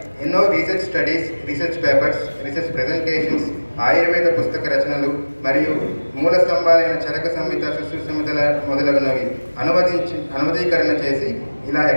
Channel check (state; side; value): inverted; both; correlation -1.00